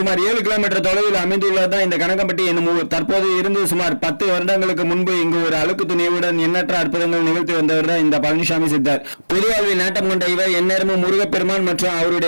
7 கிலோமீட்டர் தொலைவில் அமைந்துள்ளதுதான் இந்த கனகம்பட்டி என்னும் ஊர். தற்போது இருந்து சுமார் 10 வருடங்களுக்கு முன்பு இங்கு ஒரு அழுக்கு துணியுடன் எண்ணற்ற அற்புதங்கள் நிகழ்த்தி வந்தவர் தான் இந்த பழனிசாமி சித்தர். பொதுவாழ்வில் நாட்டம் கொண்ட இவர் எந்நேரமும் முருகப்பெருமான் மற்றும்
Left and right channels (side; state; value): both; inverted; correlation -1.00